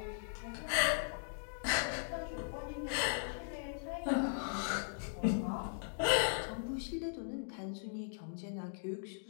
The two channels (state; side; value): silent; right; digital silence